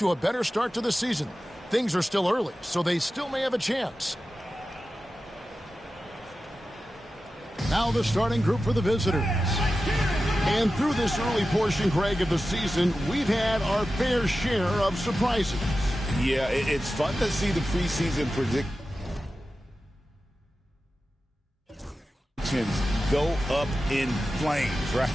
a better start to the season. Things are still early, so they still may have a chance. Now the starting group for the visitors. And through this early portion, Greg, of the season, we've had our fair share of surprises. Yeah, it's fun to see the preseason predictions go up in flames, right?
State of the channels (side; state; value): both; normal; correlation 0.93